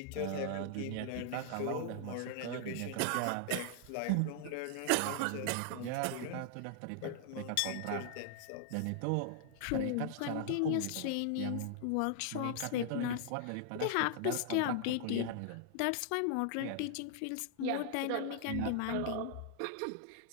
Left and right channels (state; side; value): different; both; correlation 0.00